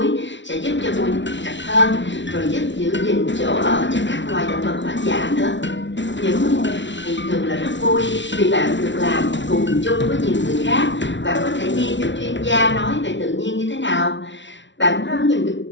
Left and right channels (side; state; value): right; late; 0.54 ms